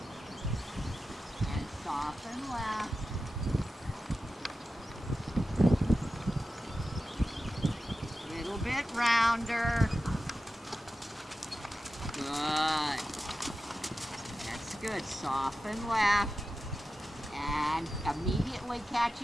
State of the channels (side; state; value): both; normal; correlation 0.92